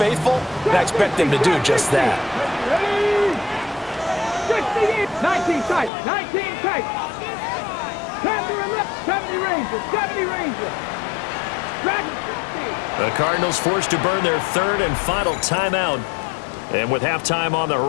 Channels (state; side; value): drops out; right; at 5.9 s